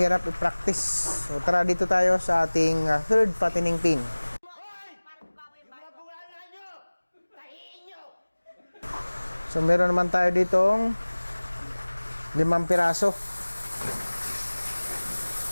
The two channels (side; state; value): both; inverted; correlation -1.00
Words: i-practice. So tara dito tayo sa ating third patining pin. So meron naman tayo ditong 5 piraso.